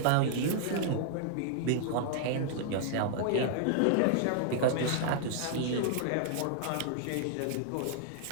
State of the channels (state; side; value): different; both; correlation -0.01